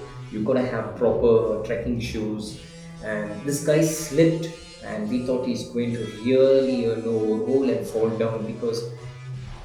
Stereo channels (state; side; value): identical; both; correlation 1.00